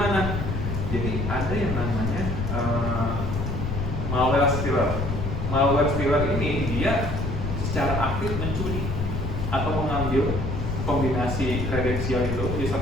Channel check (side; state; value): left; noise; rumble, 3 dB below the sound